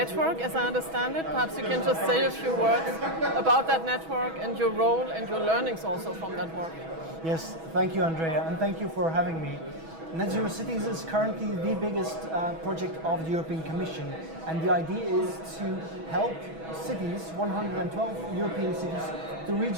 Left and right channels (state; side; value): late; left; 6.2 ms